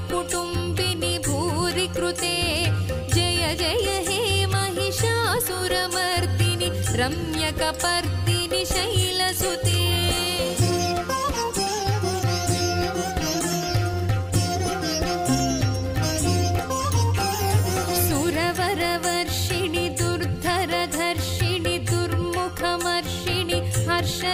कुटुम्बिनि भूरि कृते जय जय हे महिषासुरमर्दिनि रम्यकपर्दिनि शैलसुते सुरवरवर्षिणि दुर्धरधर्षिणि दुर्मुखमर्षिणि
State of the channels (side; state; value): both; identical; correlation 1.00